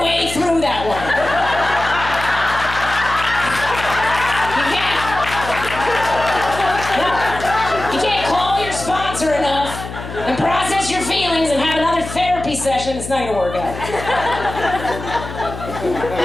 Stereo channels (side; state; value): left; noise; hum, 10 dB below the sound